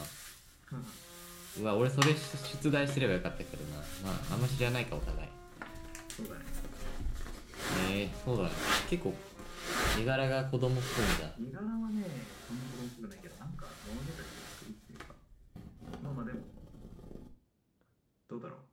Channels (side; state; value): both; identical; correlation 1.00